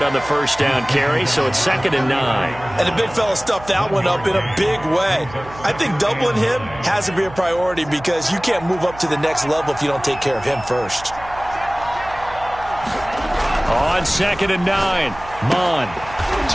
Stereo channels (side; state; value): right; noise; hum, 17 dB below the sound